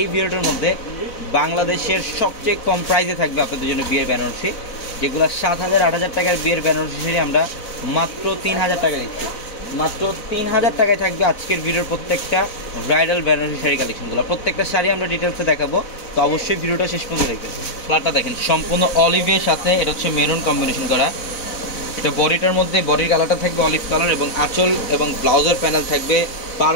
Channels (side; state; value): right; late; 4.0 ms